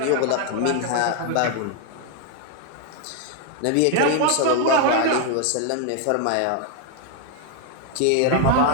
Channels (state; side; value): different; both; correlation 0.00